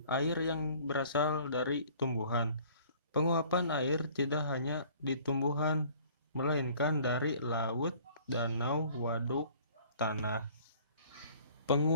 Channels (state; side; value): inverted; both; correlation -0.53